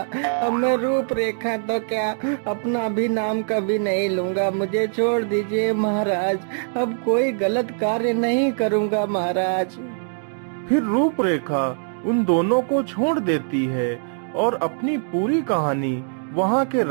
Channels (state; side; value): silent; left; digital silence